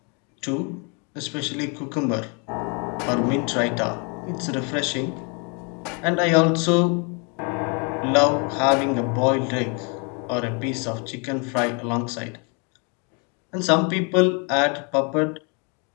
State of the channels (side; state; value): right; quieter; 34.8 dB